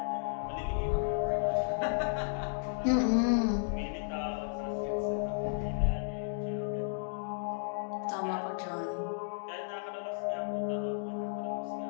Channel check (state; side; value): silent; right; digital silence